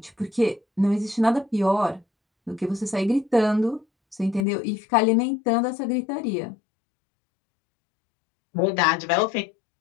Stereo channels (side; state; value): right; drops out; at 4.5 s